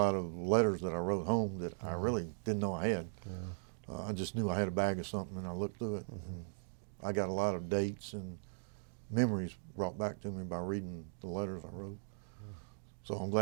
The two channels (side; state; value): left; silent; digital silence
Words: of letters that I wrote home that I really didn't know I had. I just knew I had a bag of something, and I looked through it. I got a lot of dates and memories brought back to me by reading the letters I wrote. So I'm